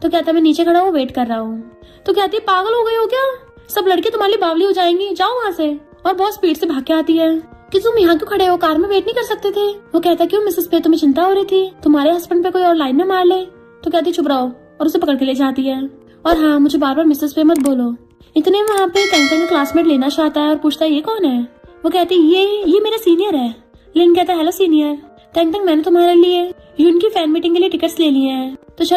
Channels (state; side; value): identical; both; correlation 1.00